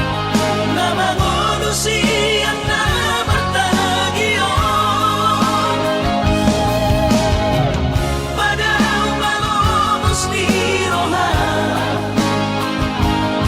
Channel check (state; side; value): identical; both; correlation 1.00